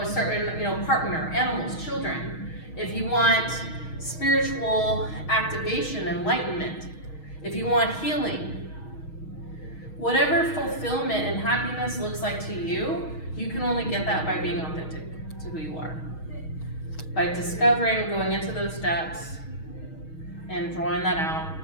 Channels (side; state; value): right; late; 6.3 ms